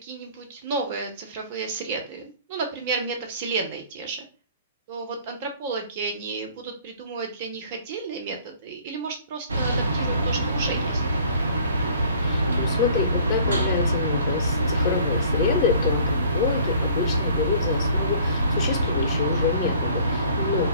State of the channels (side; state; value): both; inverted; correlation -0.53